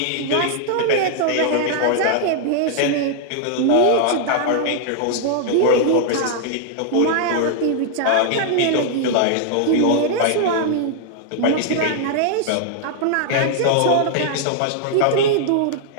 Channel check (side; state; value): both; different; correlation -0.01